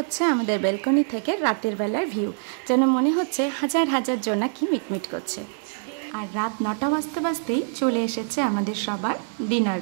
আমাদের ব্যালকনি থেকে রাতের বেলার ভিউ, যেন মনে হচ্ছে হাজার হাজার জোনাকি মিটমিট করছে। আর রাত 9টা বাজতে বাজতেই চলে এসেছে আমাদের সবার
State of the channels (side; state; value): left; silent; digital silence